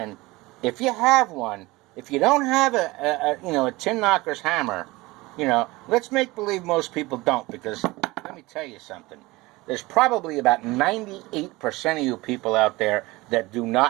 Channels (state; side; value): quieter; left; 21.3 dB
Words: if you have one, if you don't have a tin knocker's hammer, let's make believe most people don't, because let me tell you something. There's probably about 98% of you people out there that do